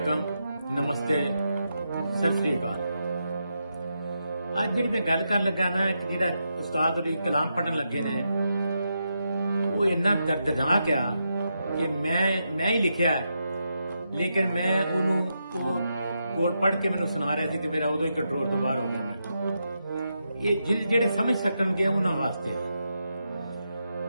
नमस्ते, सत श्री अकाल। ਅੱਜ ਜਿਹੜੀ ਮੈਂ ਗੱਲ ਕਰਨ ਲੱਗਾ ਨਾ ਕਿ ਜਿਹੜਾ ਉਸਤਾਦ ਉਹਦੀ ਕਲਾਮ ਪੜਨ ਲੱਗੇ ਨੇ ਉਹ ਇੰਨਾ ਦਰਦਨਾਕ ਆ ਕਿ ਮੈਂ ਹੀ ਲਿਖਿਆ, ਲੇਕਿਨ ਮੈਂ ਉਹਨੂੰ ਉਹ ਕੋਲ ਪੜ੍ਹ ਕੇ ਮੈਨੂੰ ਸੁਣਾ ਰਿਹਾ ਸੀ ਤੇ ਮੇਰਾ ਉਦੋਂ ਹੀ ਕੰਟਰੋਲ ਤੋਂ ਬਾਹਰ ਹੋ ਗਿਆ। ਮੈਂ ਇਹ ਜਿਹੜੇ ਸਮਝ ਸਕਣਗੇ ਉਹਨਾਂ ਵਾਸਤੇ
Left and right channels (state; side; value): inverted; both; correlation -0.85